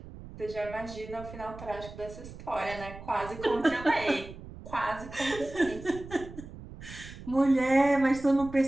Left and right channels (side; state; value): right; noise; rumble, 14 dB below the sound